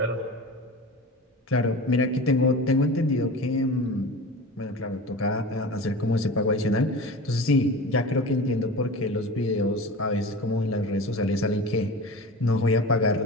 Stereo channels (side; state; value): both; normal; correlation 0.33